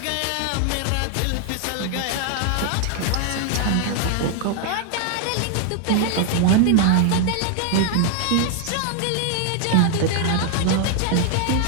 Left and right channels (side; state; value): both; different; correlation 0.00